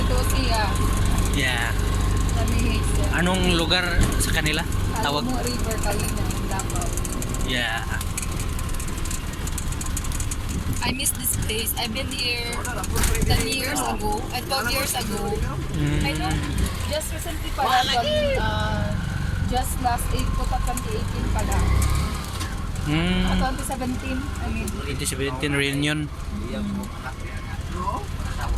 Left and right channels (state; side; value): identical; both; correlation 1.00